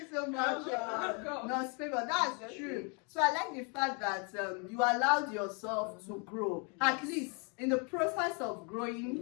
so much. No, favor. That's true. So I like the fact that you allowed yourself to grow. At least in the process of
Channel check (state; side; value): quieter; right; 35.2 dB